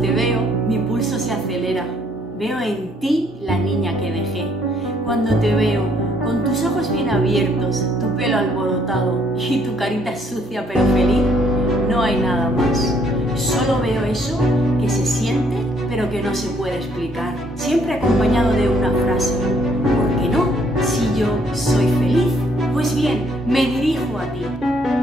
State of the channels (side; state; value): both; normal; correlation 0.67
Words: veo, mi pulso se acelera. Veo en ti la niña que dejé. Cuando te veo, con tus ojos bien abiertos, tu pelo alborotado y tu carita sucia pero feliz, no hay nada más. Solo veo eso que se siente pero que no se puede explicar. Siempre acompañado de una frase. ¿Por qué no? Si yo soy feliz. Pues bien, me dirijo a ti.